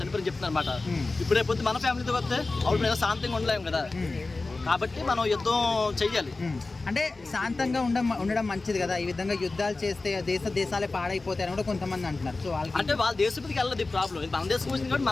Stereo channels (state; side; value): quieter; right; 3.5 dB